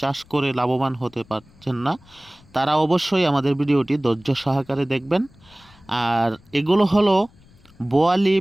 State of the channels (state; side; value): noise; left; rumble, 27 dB below the sound